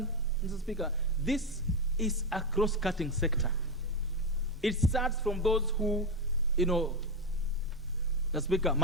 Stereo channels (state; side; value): normal; both; correlation 0.13